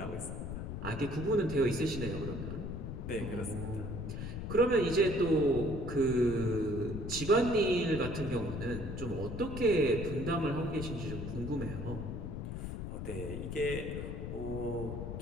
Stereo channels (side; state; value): left; noise; rumble, 5 dB below the sound